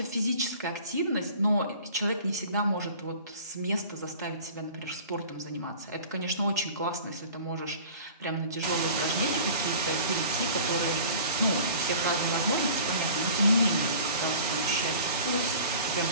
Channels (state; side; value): inverted; both; correlation -0.44